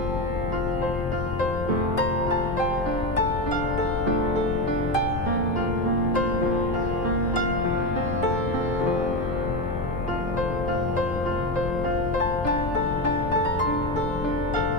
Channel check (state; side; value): noise; left; rumble, 6 dB below the sound